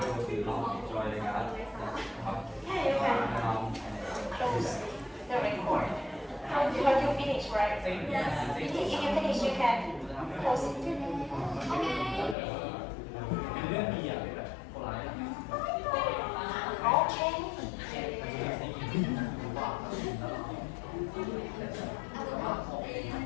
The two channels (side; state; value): right; drops out; at 12.4 s